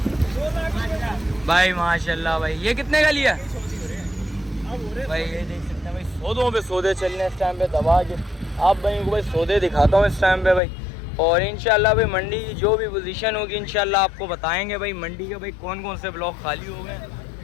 भाई माशाल्लाह। भाई ये कितने का लिया? भाई ये देख सकते हैं भाई, सौदों पे सौदे चल रहे हैं इस टाइम पे दबा के। आप भाइयों को भाई सौदे दिखाता हूँ इस टाइम पे भाई। और इंशाल्लाह भाई मंडी की जो भी पोजीशन होगी इंशाल्लाह आपको बताएंगे। भाई मंडी के भाई कौन कौन से ब्लॉक खाली हो गए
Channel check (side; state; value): right; drops out; at 10.6 s